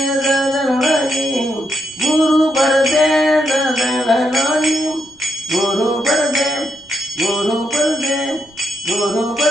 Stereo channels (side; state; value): right; noise; rumble, 30 dB below the sound